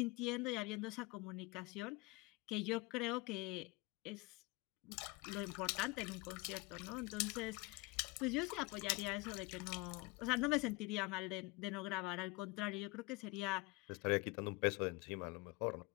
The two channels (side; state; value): right; quieter; 24.4 dB